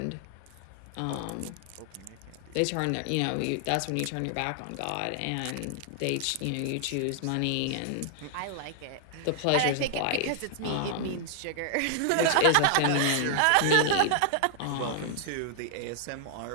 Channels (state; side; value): different; both; correlation -0.01